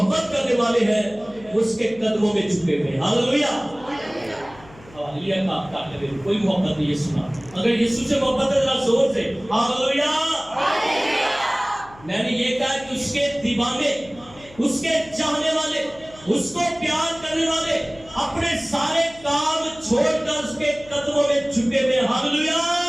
کرنے والے ہیں, اس کے قدموں میں جھکے ہوئے. ہاللویا. ہاللویا کا کرے کوئی محبت نہیں یسوع کا. اگر یسوع سے محبت ہے ذرا زور سے ہاللویا. میں نے یہ کہا کہ اس کے دیوانے, اس کے چاہنے والے, اس کو پیار کرنے والے اپنے سارے کام چھوڑ کر اس کے قدموں میں جھکے ہوئے. ہاللویا.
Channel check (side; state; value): left; noise; hum, 22 dB below the sound